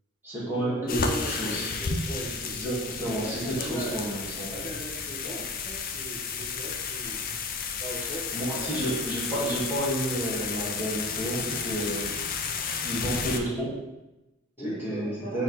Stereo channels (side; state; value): both; normal; correlation 0.36